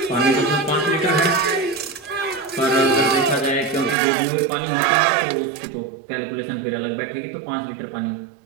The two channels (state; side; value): drops out; left; at 4.0 s